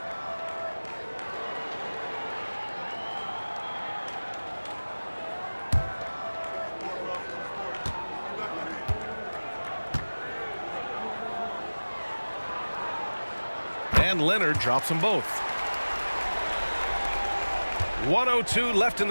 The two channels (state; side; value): inverted; both; correlation -1.00